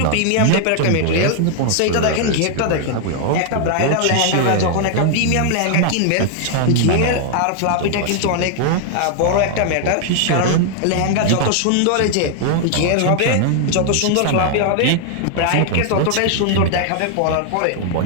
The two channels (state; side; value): different; both; correlation 0.00